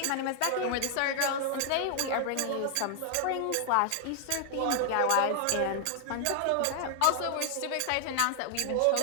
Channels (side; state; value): both; different; correlation 0.00